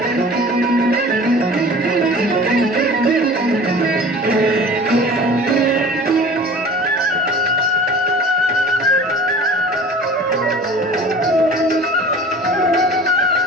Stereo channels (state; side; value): normal; both; correlation 0.42